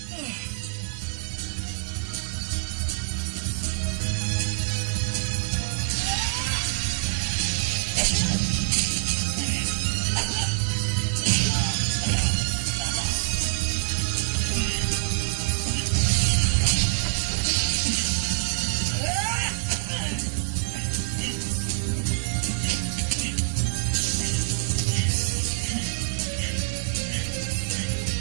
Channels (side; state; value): left; silent; digital silence